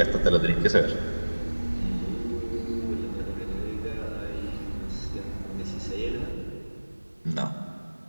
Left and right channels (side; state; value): both; inverted; correlation -1.00